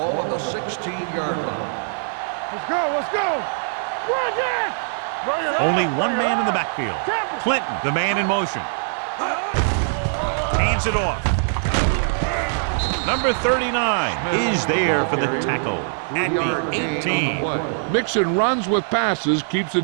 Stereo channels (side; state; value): left; silent; 60 dB below the other